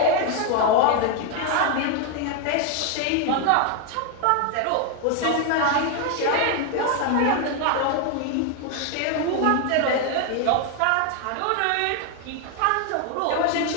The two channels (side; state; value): both; different; correlation 0.01